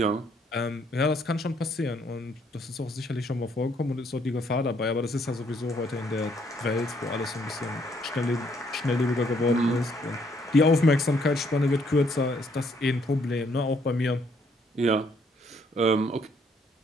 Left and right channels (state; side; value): normal; both; correlation 0.69